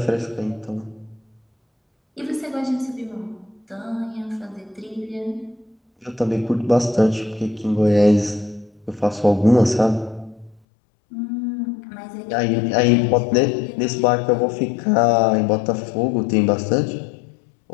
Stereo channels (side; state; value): right; drops out; at 10.6 s